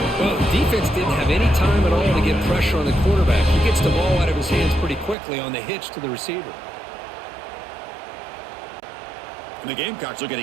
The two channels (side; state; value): left; drops out; at 5.2 s